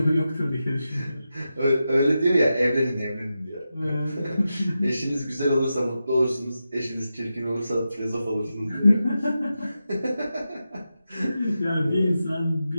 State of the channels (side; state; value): both; inverted; correlation -0.90